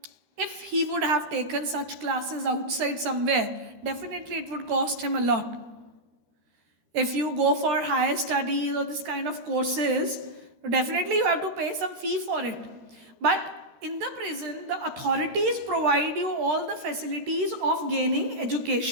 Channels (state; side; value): late; left; 13 ms